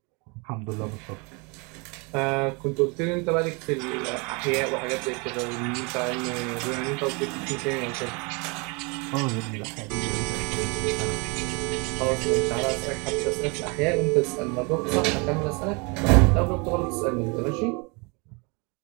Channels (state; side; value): quieter; left; 30.5 dB